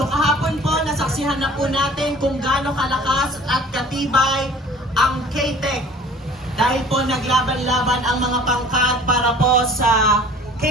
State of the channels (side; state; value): both; normal; correlation 0.47